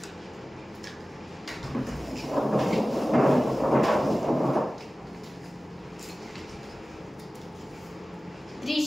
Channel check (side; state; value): both; normal; correlation 0.97